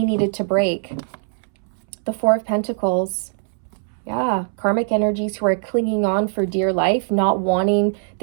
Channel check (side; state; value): left; silent; 64 dB below the other